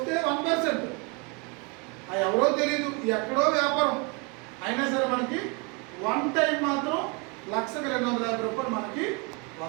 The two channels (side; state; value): left; quieter; 30.8 dB